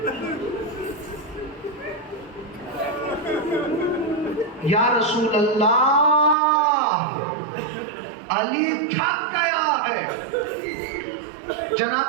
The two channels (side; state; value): left; drops out; at 6.4 s